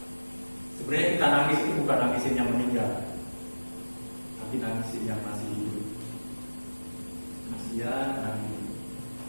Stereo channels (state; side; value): inverted; both; correlation -1.00